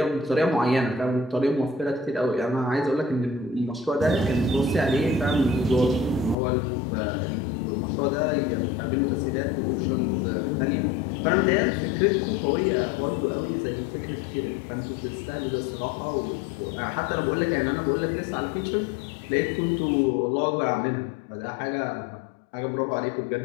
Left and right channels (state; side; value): drops out; right; at 6.4 s